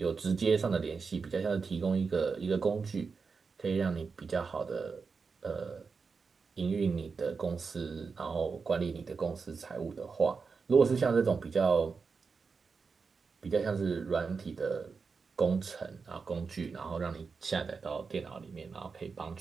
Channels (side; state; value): left; quieter; 5.0 dB